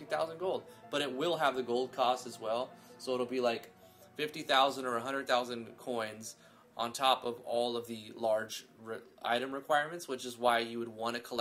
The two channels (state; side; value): identical; both; correlation 1.00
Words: gold, but it will have the gold cost as well. So it'll be like 50,000 or 100,000 coins on top of all of the large item requirements, which is why you would want to